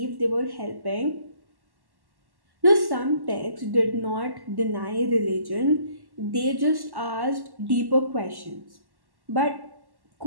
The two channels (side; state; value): left; late; 1.1 ms